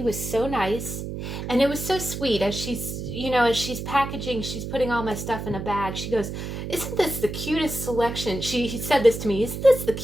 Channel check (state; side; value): noise; right; hum, 6 dB below the sound